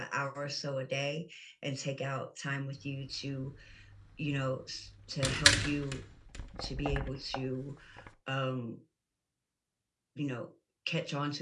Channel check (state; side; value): identical; both; correlation 1.00